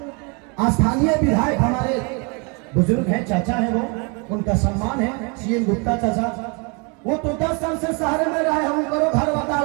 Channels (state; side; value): quieter; left; 33.0 dB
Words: स्थानीय विधायक हमारे बुजुर्ग हैं, चाचा हैं, वो उनका सम्मान है, सीएम गुप्ता चाचा। वो तो 10 साल से शहर में रहे, हम करो घर